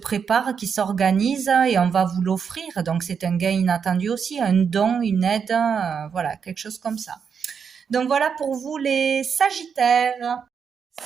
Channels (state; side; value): quieter; left; 6.6 dB